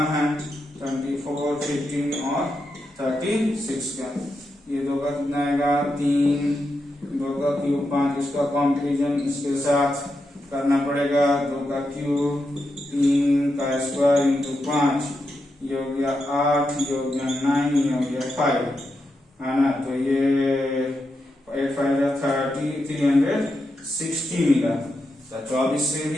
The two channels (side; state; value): both; normal; correlation 0.86